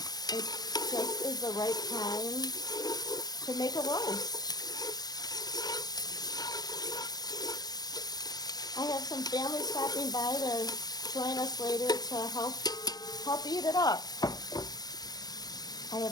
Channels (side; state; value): right; late; 0.19 ms